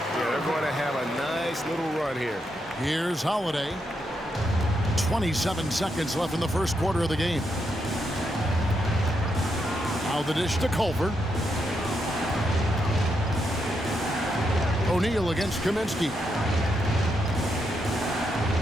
Yeah, they're going to have a nice little run here. Here's Holiday. 27 seconds left in the first quarter of the game. Now the dish to Culver. O'Neal against Kaminsky.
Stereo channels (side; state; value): both; normal; correlation 0.81